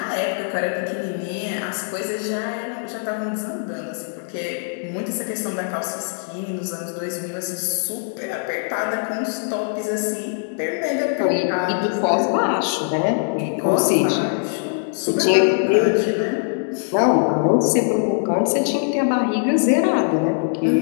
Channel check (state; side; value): silent; right; digital silence